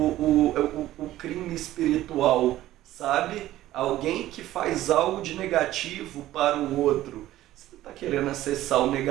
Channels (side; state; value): left; quieter; 14.6 dB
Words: crime espiritual, sabe? Alguém que faz algo de negativo para o outro. Se você está querendo acessar o